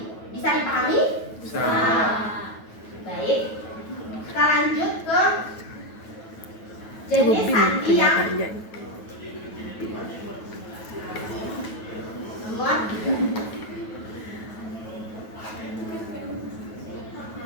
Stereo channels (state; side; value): late; right; 9.3 ms